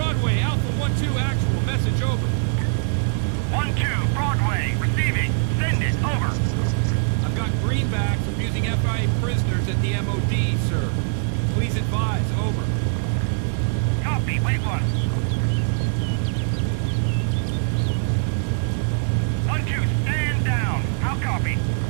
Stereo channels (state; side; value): silent; left; digital silence